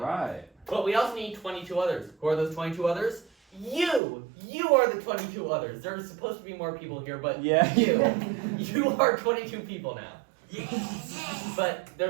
But we also need 22 others. Who are those 22 others? You are the 22 others. There's supposed to be more people here, but you are 22 people now. Yes. But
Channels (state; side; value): drops out; left; at 4.0 s